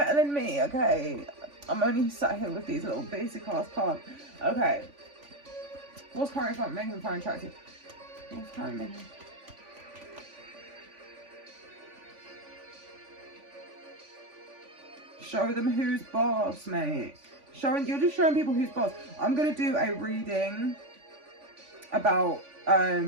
than me, okay? I'm only sat here with these little basic ass cards. Okay. What's currently making them find attractive? What's currently making... Show them who's boss, mate. You're just showing people who's boss. I'm gonna do a reading about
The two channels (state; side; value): late; left; 3.5 ms